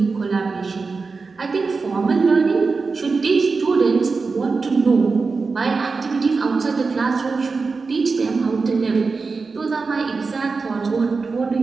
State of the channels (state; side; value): quieter; left; 4.4 dB